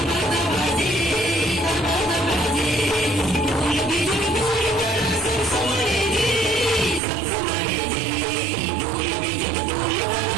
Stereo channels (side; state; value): left; drops out; at 7.0 s